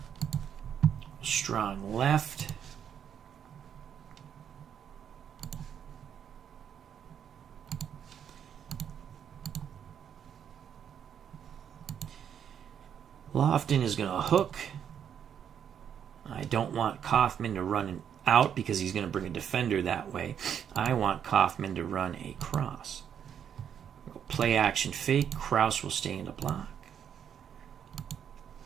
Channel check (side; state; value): left; quieter; 8.5 dB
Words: Strong left. Lofton is going to hook. I don't want Kaufman to run out because he's going to bring a defender that way. I want Kaufman to run a cross. Play action fake. Krause will stay in the block.